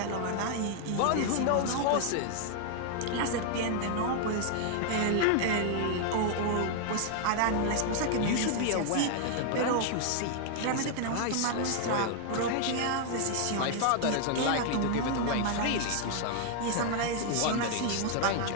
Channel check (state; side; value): different; both; correlation 0.00